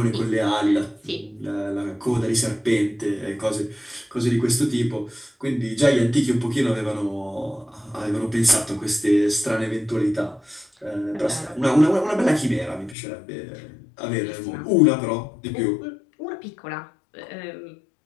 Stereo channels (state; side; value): drops out; right; at 13.0 s